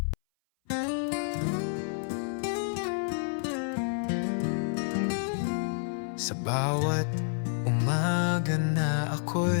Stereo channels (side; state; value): right; silent; 57 dB below the other